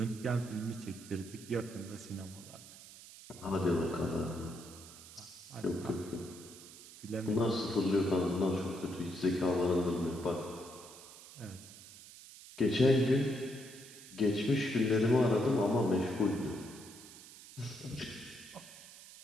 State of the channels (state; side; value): noise; right; hiss, 17 dB below the sound